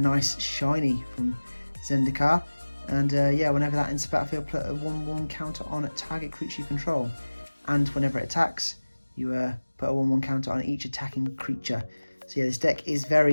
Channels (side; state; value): both; inverted; correlation -1.00